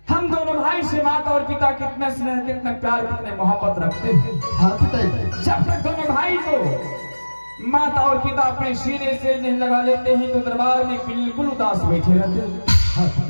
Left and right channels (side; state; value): both; inverted; correlation -1.00